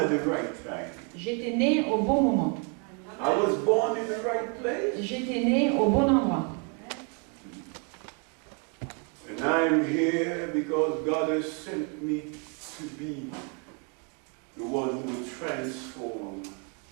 the right time. J'étais né au bon moment. I was born in the right place. J'étais né au bon endroit. And I'm here because God has sent me to be the one who will transform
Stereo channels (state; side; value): quieter; left; 35.7 dB